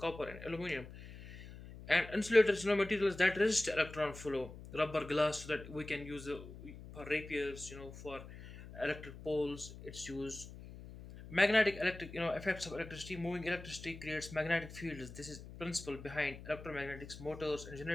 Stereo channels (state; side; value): noise; left; hum, 14 dB below the sound